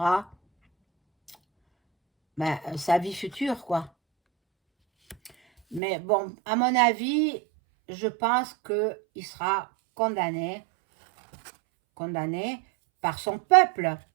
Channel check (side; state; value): left; drops out; at 5.8 s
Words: sa vie future, quoi. Mais bon, à mon avis, je pense qu'il sera condamné condamné par son peuple.